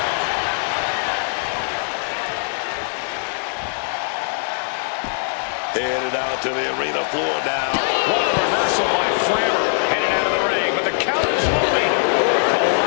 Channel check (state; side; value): silent; right; 62 dB below the other